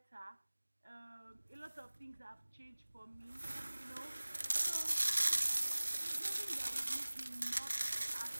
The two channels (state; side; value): inverted; both; correlation -1.00